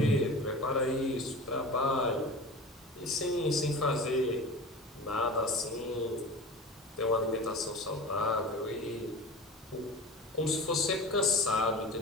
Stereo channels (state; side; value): normal; both; correlation 0.35